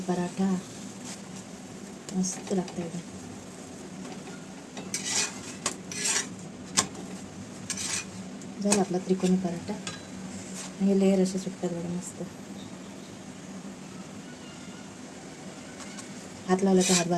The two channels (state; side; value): identical; both; correlation 1.00